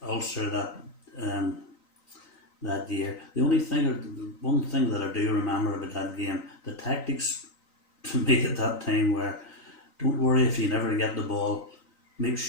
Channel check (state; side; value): late; right; 3.9 ms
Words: Ulster that year. The one thing that I do remember about that game, the tactics to me at that time were, don't worry if you never get the ball, make